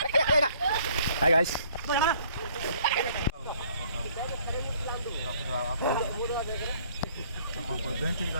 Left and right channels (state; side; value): inverted; both; correlation -0.60